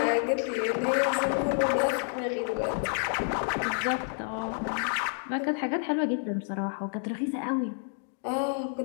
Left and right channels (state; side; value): silent; right; digital silence